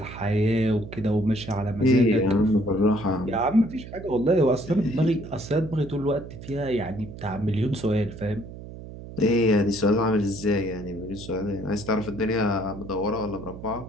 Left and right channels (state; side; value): noise; right; hum, 13 dB below the sound